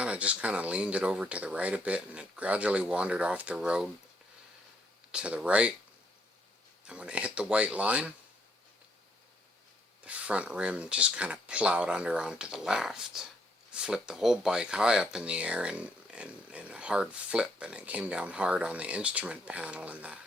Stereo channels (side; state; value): both; normal; correlation 0.71